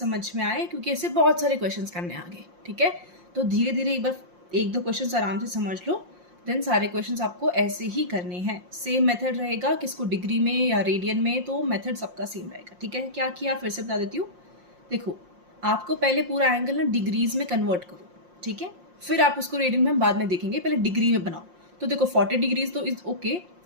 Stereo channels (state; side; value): late; left; 5.6 ms